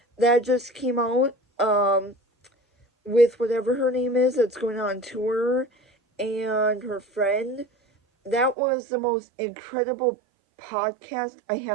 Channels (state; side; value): drops out; left; at 8.6 s